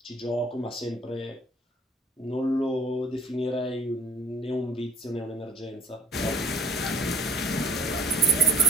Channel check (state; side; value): normal; both; correlation 0.46